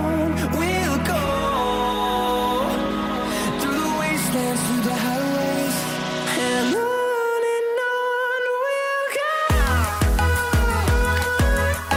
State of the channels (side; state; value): both; identical; correlation 1.00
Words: we'll go, through the wastelands, through the highways, and on.